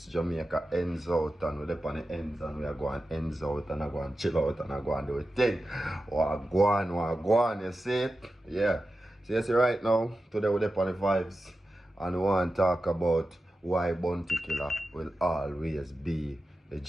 Jamaica ends out and we're up on the ends and we are going ends out and I go and chill out and I go and do a thing. Wagwan, you see it? Yeah. So you see right now, today we're up on the vibes and we want to talk about why Bounty Killer will always be the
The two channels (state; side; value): normal; both; correlation 0.92